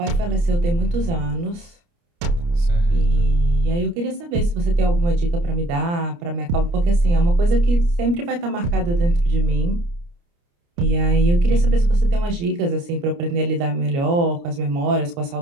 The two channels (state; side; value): late; left; 29 ms